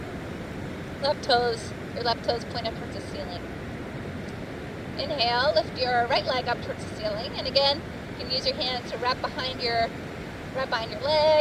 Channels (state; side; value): identical; both; correlation 1.00